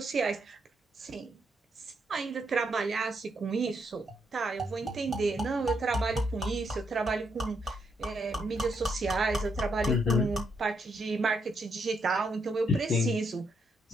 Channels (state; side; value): normal; both; correlation 0.78